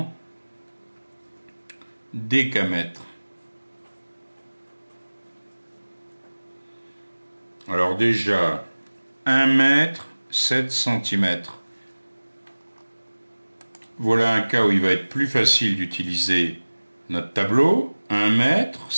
décamètres. Alors déjà, 1 mètre, 7 cm. Voilà un cas où il va être plus facile d'utiliser notre tableau. 1 mètre,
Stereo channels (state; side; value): inverted; both; correlation -1.00